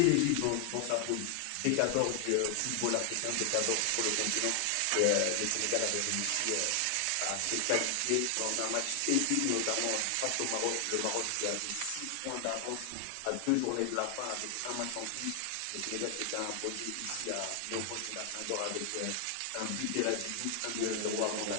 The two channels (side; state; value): both; different; correlation 0.00